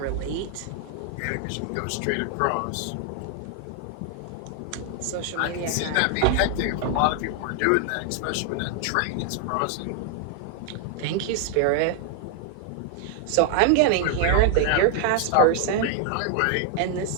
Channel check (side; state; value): both; different; correlation 0.00